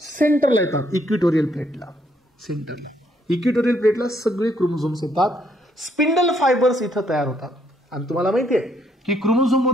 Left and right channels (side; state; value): both; normal; correlation 0.71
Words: सेंटरला येतात, इक्विटोरियल प्लेटला. सेंटरला इक्विटोरियल प्लेटला सगळे क्रोमोझोम्स येतात. स्पिंडल फायबर्स इथं तयार होतात. आणि तुम्हाला माहिती आहे की क्रोमोझोम